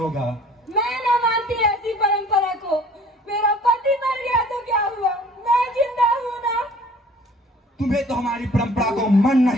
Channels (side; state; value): both; normal; correlation 0.51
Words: मैं न मानती ऐसी परंपरा को। मेरा पति मर गया तो क्या हुआ, मैं जिंदा हूँ ना। तुम्हें तो हमारी परंपरा को मानना